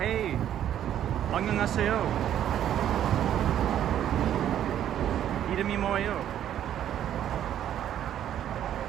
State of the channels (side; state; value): left; quieter; 10.8 dB